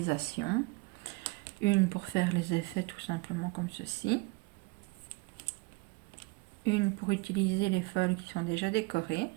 Une pour faire les effets tout simplement comme ceci. Une pour utiliser les foils qui sont déjà décorés.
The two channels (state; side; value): quieter; left; 25.7 dB